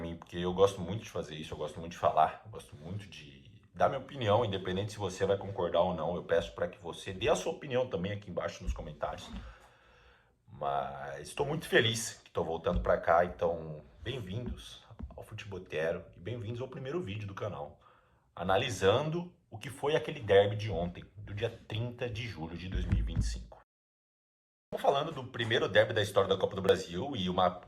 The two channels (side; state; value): both; identical; correlation 1.00